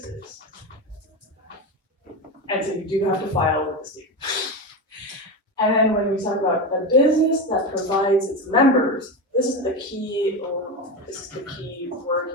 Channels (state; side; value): normal; both; correlation 0.19